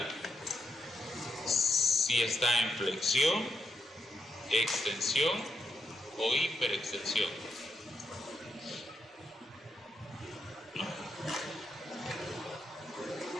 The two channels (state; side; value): normal; both; correlation 0.83